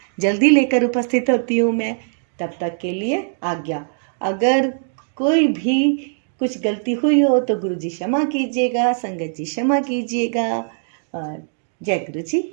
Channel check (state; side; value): silent; left; digital silence